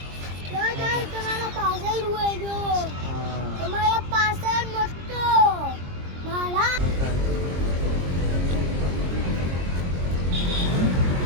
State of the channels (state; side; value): late; left; 22 ms